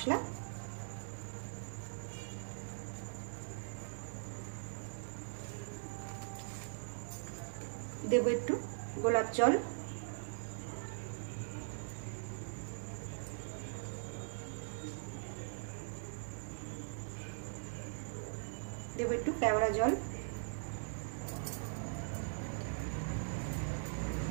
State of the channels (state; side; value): silent; left; 50 dB below the other